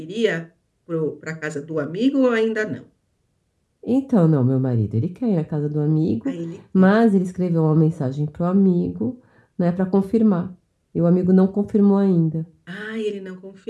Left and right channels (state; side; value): identical; both; correlation 1.00